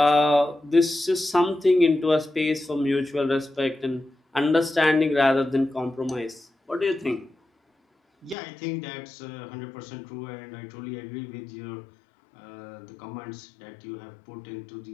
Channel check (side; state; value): right; drops out; at 8.3 s